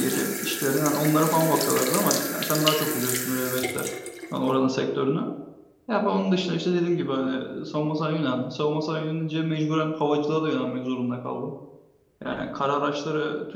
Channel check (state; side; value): identical; both; correlation 1.00